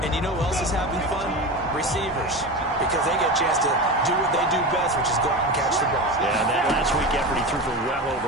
And you know who else is having fun? Receivers. Because they get a chance to do what they do best, which is go out and catch the ball. Yeah, and that last week effort, he threw for well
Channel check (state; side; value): normal; both; correlation 0.25